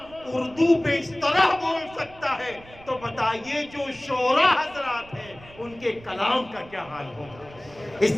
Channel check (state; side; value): noise; right; rumble, 21 dB below the sound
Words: اردو پہ اس طرح بول سکتا ہے تو بتائیے جو شعراء حضرات ہیں ان کے کلام کا کیا حال ہوگا. اس